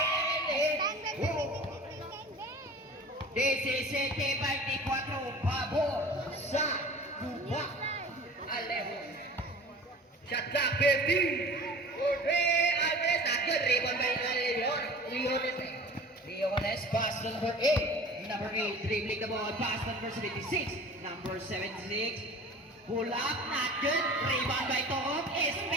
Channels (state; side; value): normal; both; correlation 0.41